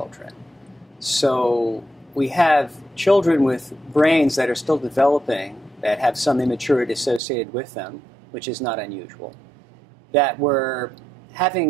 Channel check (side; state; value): left; drops out; at 7.2 s